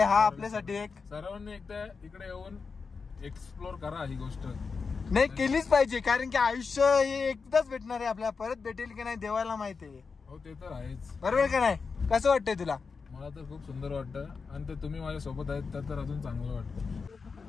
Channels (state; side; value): quieter; right; 5.0 dB